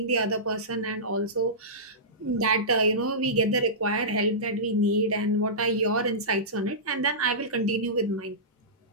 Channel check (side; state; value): both; normal; correlation -0.19